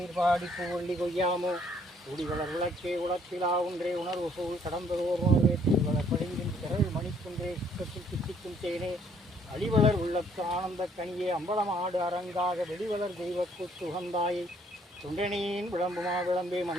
பூவள்ளி கொய்யாமோ ஊடிவளர் விளக்கே உளத்திலா ஒன்றே உணர்வு சூழ் கடந்ததோர் உணர்வே திருவளர் படிந்தின் திரள் மணிக்குன்றே சுற்றத்தில் திட்டிக்கும் தேனே அடிவளர் உள்ளத்து ஆனந்த கனியே அம்பலம் ஆடு அரங்காக வெளிவளர் தெய்வக்கு உகந்தாயை தொண்டனியின் விளம்புமா விளம்பே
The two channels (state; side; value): normal; both; correlation 0.64